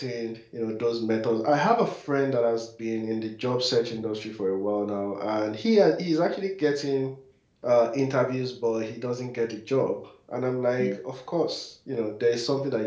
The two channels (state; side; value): identical; both; correlation 1.00